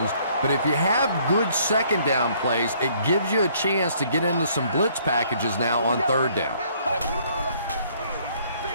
but if you have good second down plays, it gives you a chance to get into some blitz packages now on third down.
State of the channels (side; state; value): both; inverted; correlation -0.63